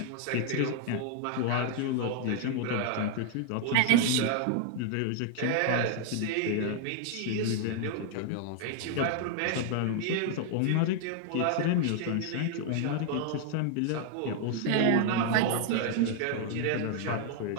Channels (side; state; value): both; different; correlation 0.00